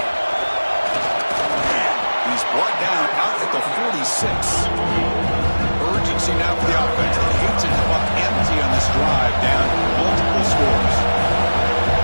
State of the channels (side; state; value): both; inverted; correlation -1.00